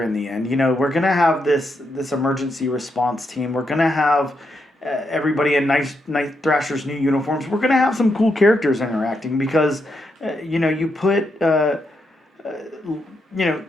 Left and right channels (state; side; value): normal; both; correlation 0.81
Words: in the end. We're going to have this emergency response team. We're going to have everybody in Night Thrasher's new uniforms. We're going to have some cool characters interacting because, you put,